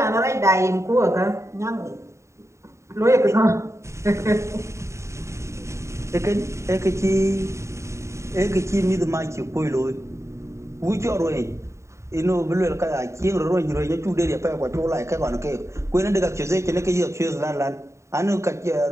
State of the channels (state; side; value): late; left; 0.14 ms